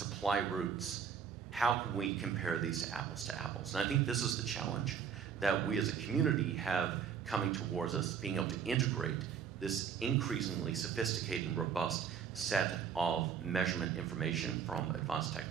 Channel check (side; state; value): left; quieter; 7.4 dB